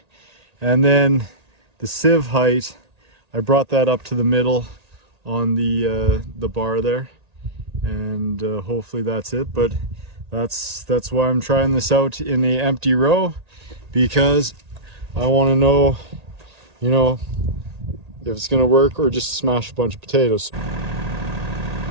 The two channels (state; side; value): late; left; 1.8 ms